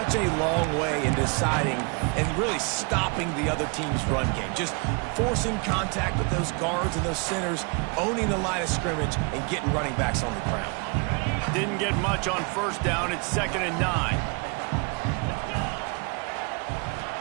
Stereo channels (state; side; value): quieter; left; 32.5 dB